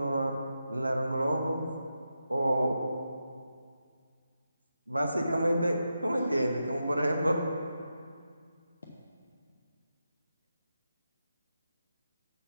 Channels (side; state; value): both; inverted; correlation -0.88